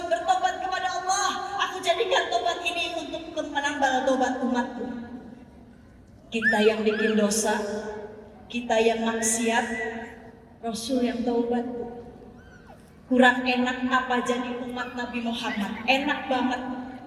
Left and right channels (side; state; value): both; identical; correlation 1.00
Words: bertobat kepada Allah, aku jadikan tobat ini untuk menambal tobat umatku. Kita yang bikin dosa, kita yang maksiat, Rasul yang taubat. Kurang enak apa jadi umat Nabi Muhammad? Enak banget.